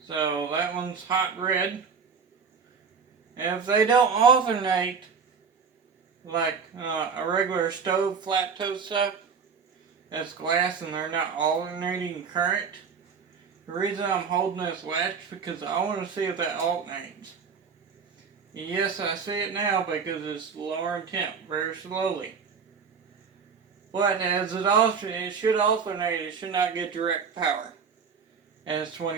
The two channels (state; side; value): quieter; left; 6.0 dB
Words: So that one's hot red. And if they don't alternate like a regular stove flat toast stuff, that's glass and they're not alternating current. The reason I'm holding this latch because I want to see if that alternates. Yes, I see it now because it's lowering temp very slowly. But as it should alternate, it should not get direct power as